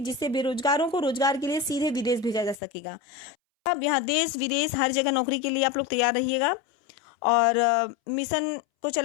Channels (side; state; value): right; drops out; at 2.6 s